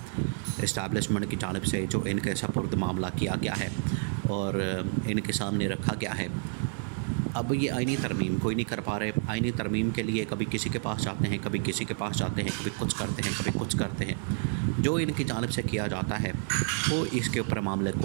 اسٹیبلشمنٹ کی جانب سے جو ان کے سپرد معاملہ کیا گیا ہے اور ان کے سامنے رکھا گیا ہے، اب یہ آئینی ترمیم کوئی نہیں کر پا رہے۔ آئینی ترمیم کے لیے کبھی کسی کے پاس جاتے ہیں، کبھی کسی کے پاس جاتے ہیں، کبھی کچھ کرتے ہیں، کبھی کچھ کرتے ہیں۔ جو ان کی جانب سے کیا جاتا ہے وہ اس کے اوپر معاملے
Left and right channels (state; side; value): silent; left; 58 dB below the other